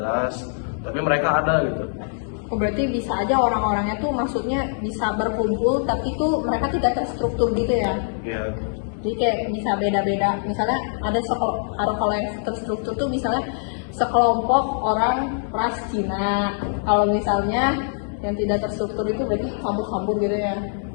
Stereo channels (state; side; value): silent; right; digital silence